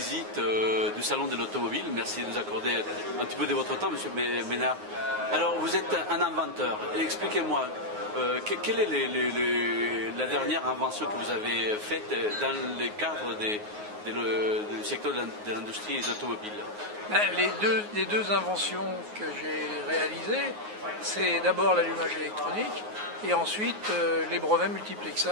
du Salon de l'Automobile. Merci de nous accorder un petit peu de votre temps, Monsieur Ménard. Alors, vous êtes un inventeur. Expliquez-moi, quelle est la dernière invention que vous avez faite dans le cadre du secteur de l'industrie automobile? Les deux inventions que j'ai réalisées, c'est d'abord l'allumage électronique et ensuite les brevets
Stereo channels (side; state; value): left; late; 9.5 ms